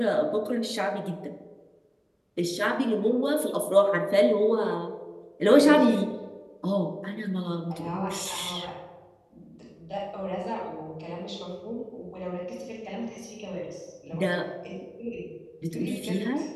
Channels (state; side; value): identical; both; correlation 1.00